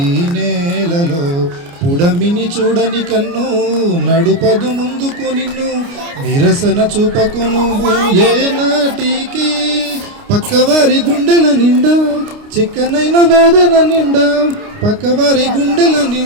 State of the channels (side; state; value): left; late; 29 ms